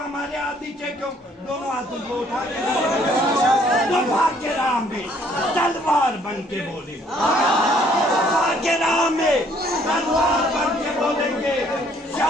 हाथ नीचे क्यों दोनों हाथों को उठा के तो भाग के राह में तलवार बन के बोले भाग के राह में तलवार बन के बोलेंगे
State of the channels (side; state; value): both; normal; correlation 0.63